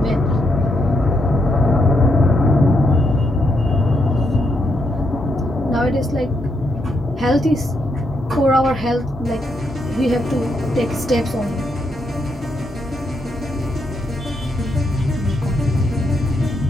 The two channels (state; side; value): normal; both; correlation 0.79